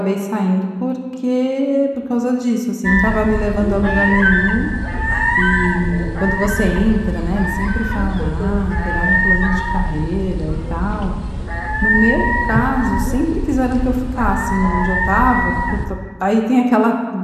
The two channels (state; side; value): identical; both; correlation 1.00